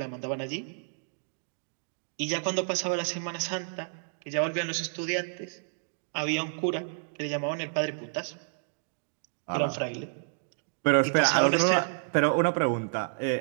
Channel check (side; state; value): left; silent; digital silence